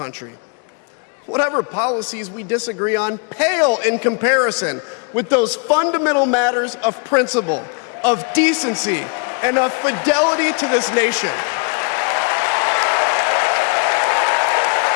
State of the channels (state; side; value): quieter; right; 37.3 dB